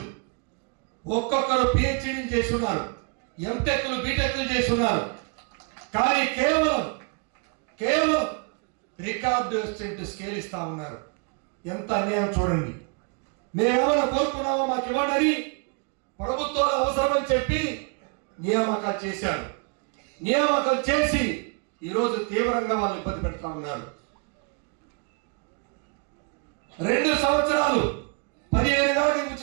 ఒక్కొక్కరు పిహెచ్డీలు చేస్తున్నారు, ఎంటెక్లు బీటెక్లు చేస్తున్నారు. కానీ కేవలం రికార్డు అసిస్టెంట్ స్కేల్ ఇస్తా ఉన్నారు. ఎంత అన్యాయం చూడండి. మేమేమైనా కోరుకున్నామో మాకు ఇవ్వండి, ప్రభుత్వాలు అవసరమని చెప్పి నియామకాలు చేశారు. నియామకాలు చేసి ఈరోజు తీవ్రంగా వాళ్ళు ఇబ్బంది పెడతా ఉన్నారు. 2 సంవత్సరాలు 15,000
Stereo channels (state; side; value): quieter; left; 34.0 dB